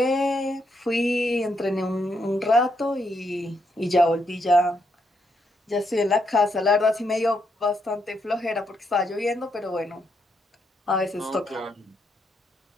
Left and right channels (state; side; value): normal; both; correlation 0.78